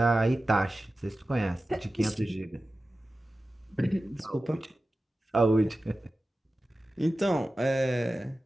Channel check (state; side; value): normal; both; correlation 0.94